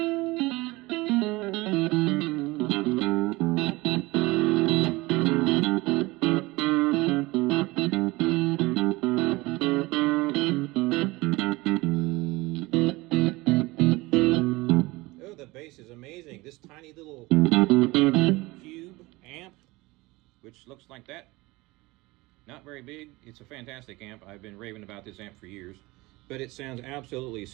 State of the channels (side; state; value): left; quieter; 21.9 dB